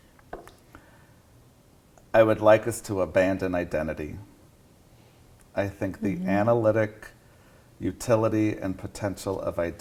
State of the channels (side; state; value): both; identical; correlation 1.00